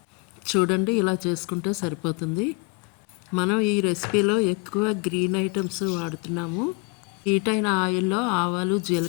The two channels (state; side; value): quieter; right; 28.3 dB